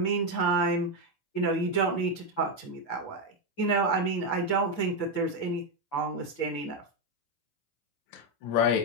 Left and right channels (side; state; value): right; late; 7.5 ms